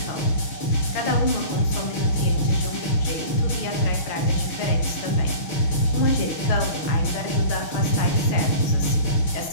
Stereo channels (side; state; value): right; late; 6.4 ms